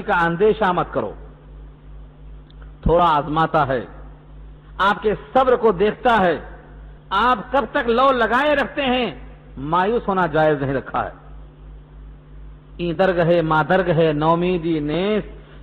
کا اندیشہ مت کرو. تھوڑا آزماتا ہے، آپ کے صبر کو دیکھتا ہے، آپ کب تک لو لگائے رکھتے ہیں، مایوس ہونا جائز نہیں رکھا ہے. این درگ ہے ماں درگ ہے، نومیدی نیس،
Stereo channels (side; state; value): both; identical; correlation 1.00